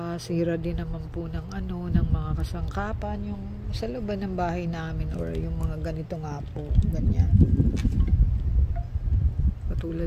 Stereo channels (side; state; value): both; identical; correlation 1.00